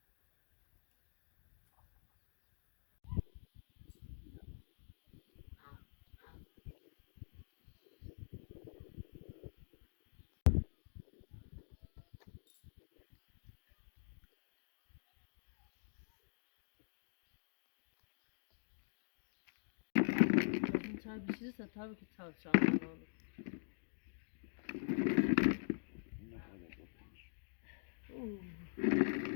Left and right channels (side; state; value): right; silent; digital silence